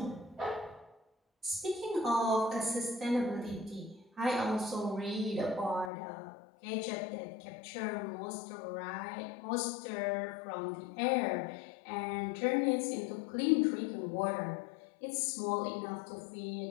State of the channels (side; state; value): right; drops out; at 5.9 s